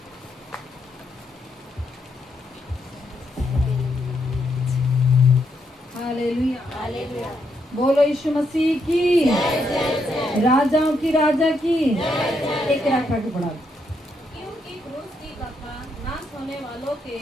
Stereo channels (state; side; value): normal; both; correlation 0.78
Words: Hallelujah, hallelujah. बोलो यीशु मसीह की, राजाओं की राजा की। 1 के रखा के पढ़ा। क्योंकि क्रूस की कथा नाश होने वालों के